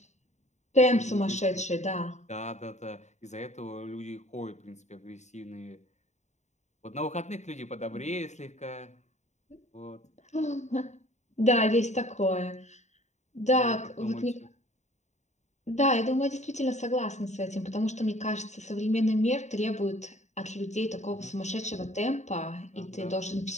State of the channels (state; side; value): late; right; 0.34 ms